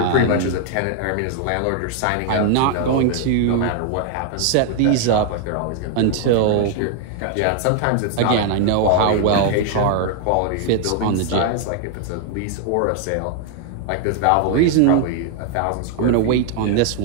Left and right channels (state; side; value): different; both; correlation 0.00